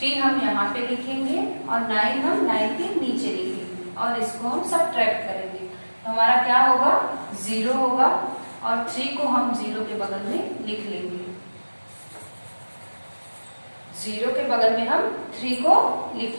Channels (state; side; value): inverted; both; correlation -1.00